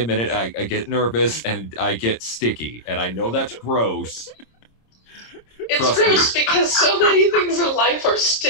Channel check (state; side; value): late; right; 26 ms